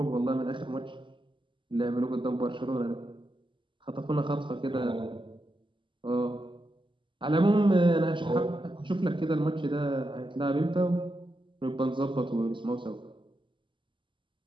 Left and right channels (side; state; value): left; late; 0.24 ms